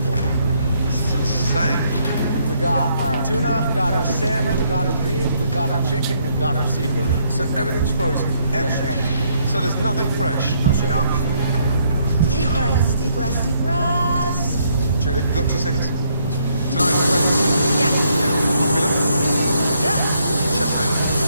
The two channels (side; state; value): both; inverted; correlation -0.71